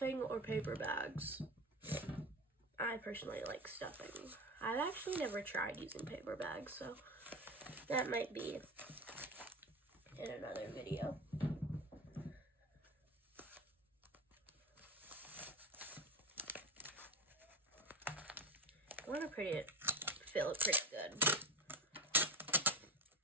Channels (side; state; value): both; normal; correlation 0.26